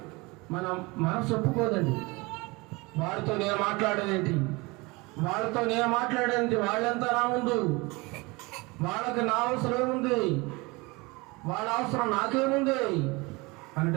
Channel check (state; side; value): quieter; left; 24.9 dB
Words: మన మనసు ఒప్పుకోదండి. వారితో నేను మాట్లాడేదేంటి, వాళ్ళతో నేను మాట్లాడేది, వాళ్ళంతా నా ముందు, వాళ్ళకి నా అవసరం ఏముంది, వాళ్ళ అవసరం నాకేముంది